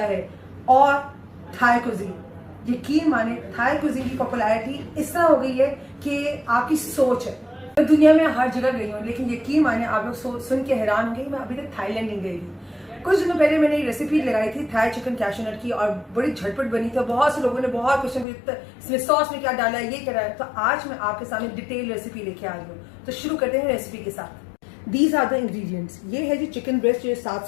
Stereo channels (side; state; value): right; drops out; at 18.2 s